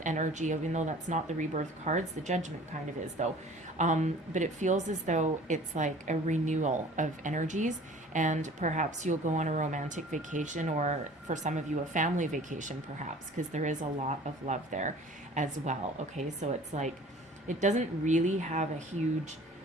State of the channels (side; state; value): both; normal; correlation 0.47